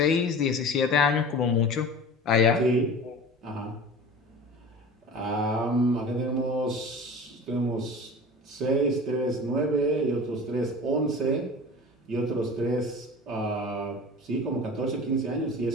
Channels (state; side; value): normal; both; correlation 0.37